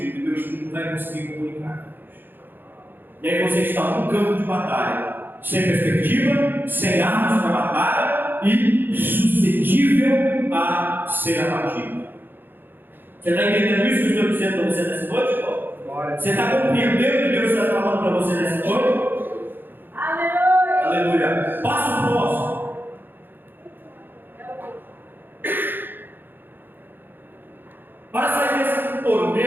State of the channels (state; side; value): late; left; 0.095 ms